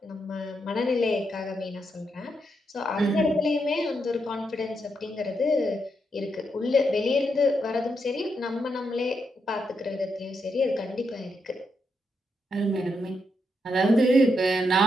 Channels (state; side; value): normal; both; correlation 0.81